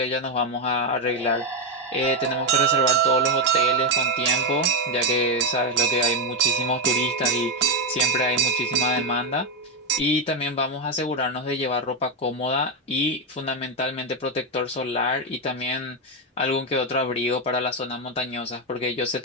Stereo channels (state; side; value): normal; both; correlation 0.06